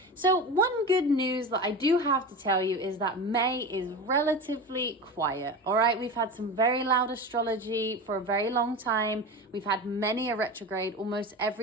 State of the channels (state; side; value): normal; both; correlation 0.27